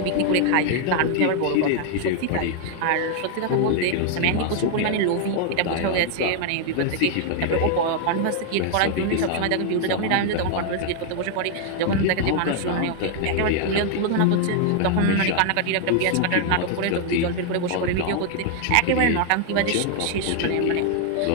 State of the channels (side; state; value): both; different; correlation 0.00